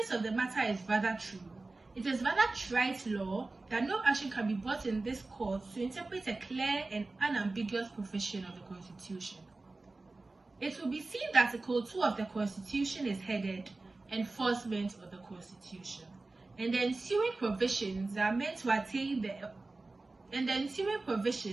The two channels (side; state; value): left; quieter; 3.3 dB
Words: of the matter is rather true. It is rather trite law that no action can be brought in this court to interpret a clear and unambiguous provision of the Constitution. It will be seen that Article 2 of the Constitution is headed Enforcement of the Constitution, and the ensuing provisions are meant to attain the